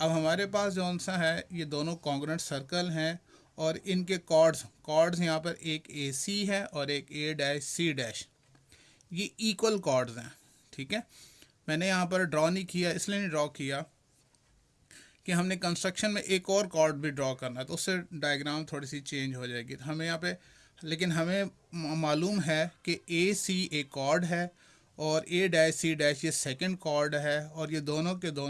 हमारे पास जौन सा है ये दोनों कॉन्ग्रेंट सर्कल हैं और इनके कॉर्ड्स यहाँ पर एक ए सी है और एक ए डैश सी डैश। ये इक्वल कॉर्ड्स हैं। ठीक है, मैंने यहाँ पर ड्रॉ नहीं किया, इसलिए नहीं ड्रॉ किया कि हमने कंस्ट्रक्शन में एक और कॉर्ड भी ड्रॉ करना है तो उससे डायग्राम थोड़ी सी चेंज हो जाएगी। तो हमें यहाँ पे, लेकिन हमें मालूम है कि ए सी एक कॉर्ड है और ए डैश सी डैश ये सेकंड कॉर्ड है और ये दोनों के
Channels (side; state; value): both; identical; correlation 1.00